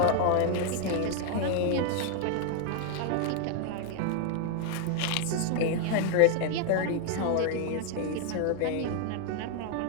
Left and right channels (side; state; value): both; different; correlation 0.00